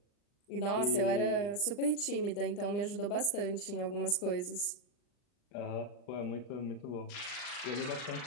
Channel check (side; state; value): right; late; 39 ms